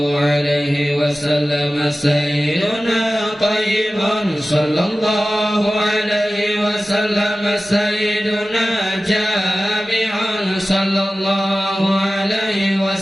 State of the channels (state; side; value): normal; both; correlation 0.96